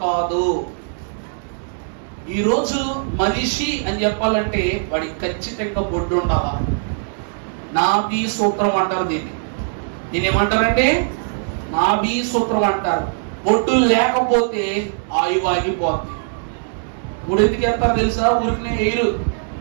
కాదు. ఈరోజు మనిషి అని చెప్పాలంటే వాడికి ఖచ్చితంగా బొడ్డు ఉండాలా. నాభి సూత్రం అంటారు దీన్ని. ఏమంటారంటే నాభి సూత్రం అంటారు. బొడ్డు లేకపోతే ఆయువు ఆగిపోద్ది. ఎందుకు వెళ్తారు తెలుసా? ఊరికి ఎయిరు.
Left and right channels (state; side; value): silent; left; digital silence